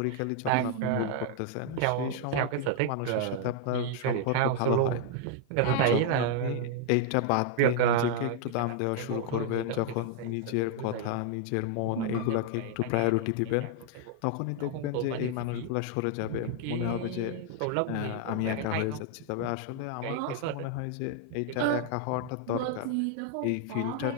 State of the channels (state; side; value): different; both; correlation 0.00